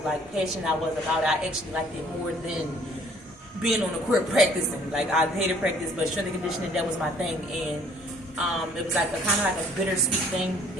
like passionate I was about it. I actually liked it more than being on the court practicing. Like, I hated practice, but strength and conditioning, that was my thing. And it was like a kind of like a bittersweet thing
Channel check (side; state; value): both; normal; correlation 0.58